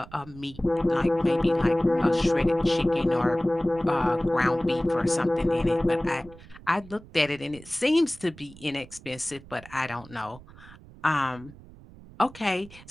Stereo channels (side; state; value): right; noise; rumble, 20 dB below the sound